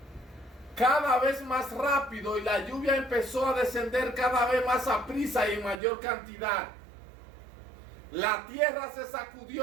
cada vez más rápido y la lluvia empezó a descender cada vez más a prisa y en mayor cantidad. La tierra se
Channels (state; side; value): drops out; left; at 5.8 s